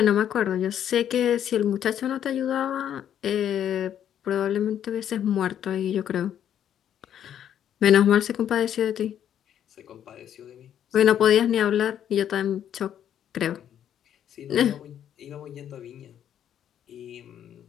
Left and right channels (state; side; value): quieter; right; 10.0 dB